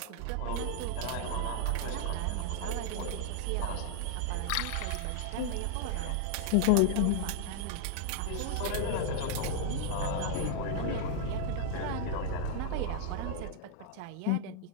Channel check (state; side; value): different; both; correlation 0.00